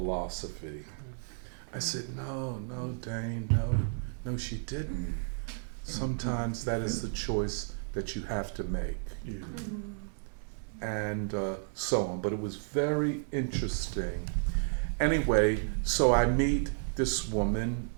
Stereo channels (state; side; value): silent; left; digital silence